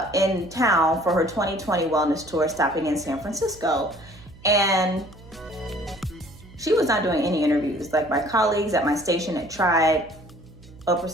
for her 2020 wellness tour, stopping in San Francisco. And she was not doing any interviews. Like, my colleagues at my station had tried. Oprah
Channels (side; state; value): right; noise; hum, 21 dB below the sound